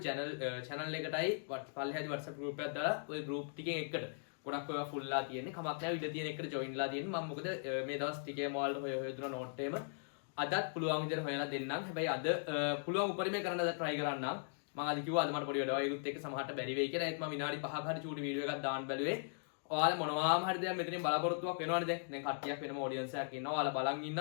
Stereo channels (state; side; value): silent; right; digital silence